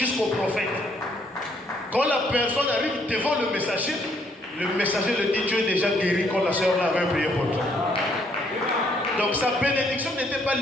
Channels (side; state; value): both; normal; correlation 0.68